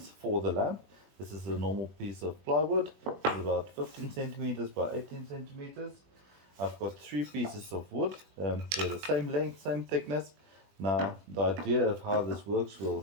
for the lamp. This is a normal piece of plywood. It's about 15 centimeters by 18 centimeters. I've got 3 pieces of wood. They're the same length, same thickness. Now the idea of how this works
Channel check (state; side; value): late; left; 21 ms